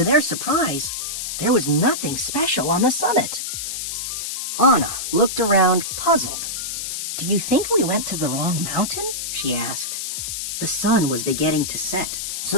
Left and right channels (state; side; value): noise; left; hiss, 4 dB below the sound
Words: their surprise, there was nothing special on the summit. Anna looked around, puzzled. "Do you think we went to the wrong mountain?" she asked. The sun was beginning to set,